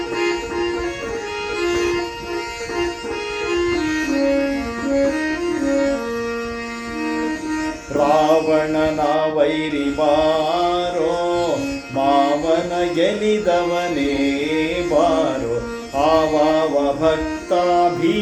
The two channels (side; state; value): both; identical; correlation 1.00